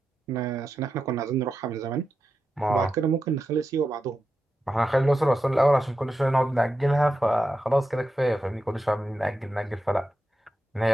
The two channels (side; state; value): both; normal; correlation 0.89